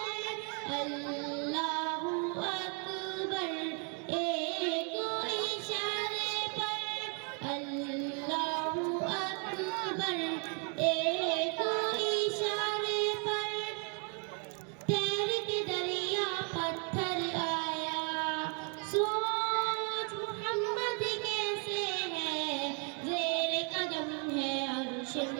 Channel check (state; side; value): quieter; left; 38.5 dB